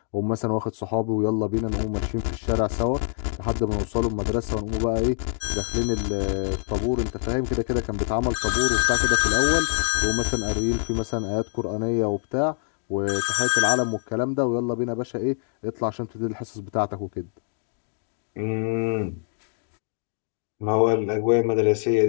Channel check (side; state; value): right; silent; 56 dB below the other